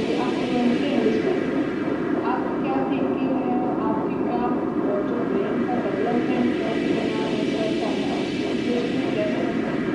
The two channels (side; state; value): both; identical; correlation 1.00